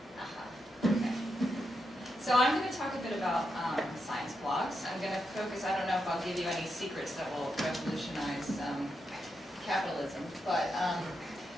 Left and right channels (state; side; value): normal; both; correlation 0.85